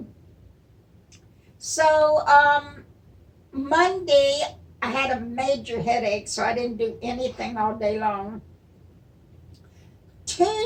So Monday I had a major headache, so I didn't do anything all day long.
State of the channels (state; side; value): identical; both; correlation 1.00